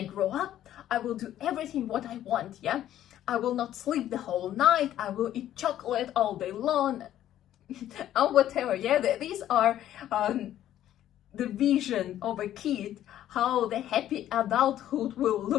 grow up, I will do everything what I want. Yeah, I will not sleep the whole night, I will eat chocolate all day long, or whatever. Yeah, these are the vision of a kid, how the happy adulthood will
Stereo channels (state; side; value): quieter; right; 12.1 dB